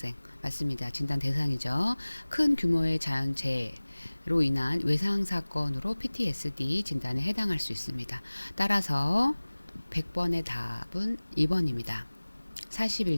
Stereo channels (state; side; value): inverted; both; correlation -1.00